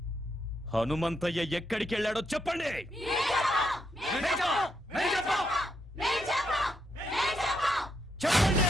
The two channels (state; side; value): normal; both; correlation 0.79